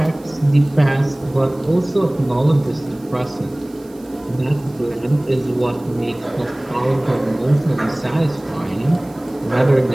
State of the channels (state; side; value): noise; right; hiss, 27 dB below the sound